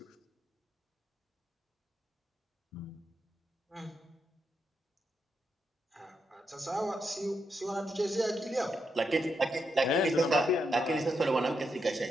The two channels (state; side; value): normal; both; correlation 0.83